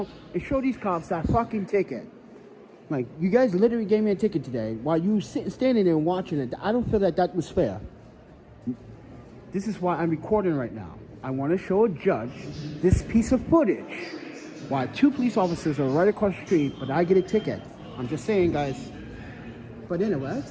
and show these cops that fucking ticket. Like, you guys literally gave me a ticket today while you standing there and watching it. I don't feel that that was fair. This is why I'm recording right now. I want to show a judge this piece of footage while 2 police officers are right across the street, but I get a ticket. I'm just saying, guys. But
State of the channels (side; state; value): both; identical; correlation 1.00